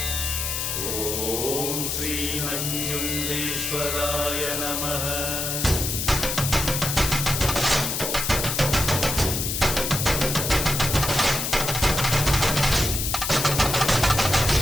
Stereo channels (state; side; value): noise; left; hiss, 1 dB below the sound